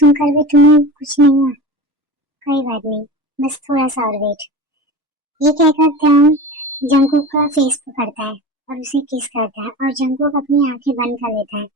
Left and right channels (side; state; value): both; normal; correlation 0.30